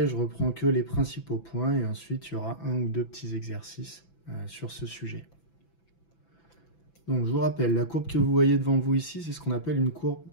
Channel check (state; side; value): late; right; 6.0 ms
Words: je reprends que les principaux points, et ensuite il y aura un ou deux petits exercices sur ce sujet. Donc je vous rappelle, la courbe que vous voyez devant vous ici, c'est ce qu'on appelle une courbe